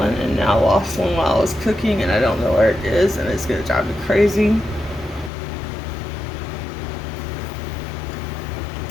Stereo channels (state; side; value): drops out; right; at 5.3 s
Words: and now I lost one while I was cooking, and I don't know where it is, and it's gonna drive me crazy.